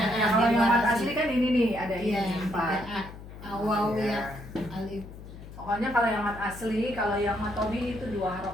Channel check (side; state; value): left; noise; hum, 15 dB below the sound